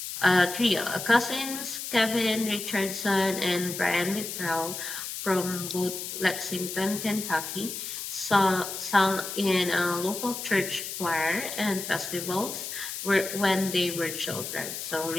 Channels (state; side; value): noise; left; hiss, 6 dB below the sound